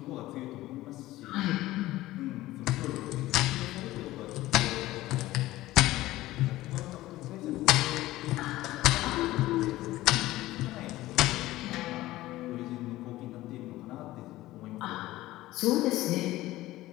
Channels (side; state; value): right; quieter; 16.7 dB